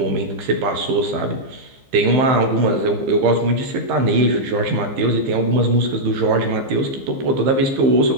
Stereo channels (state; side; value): late; left; 15 ms